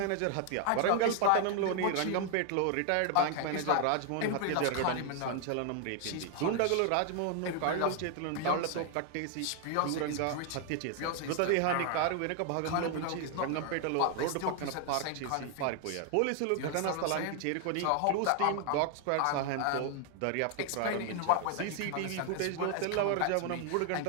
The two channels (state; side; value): different; both; correlation 0.00